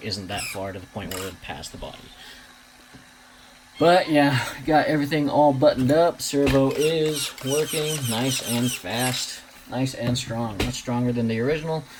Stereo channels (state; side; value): identical; both; correlation 1.00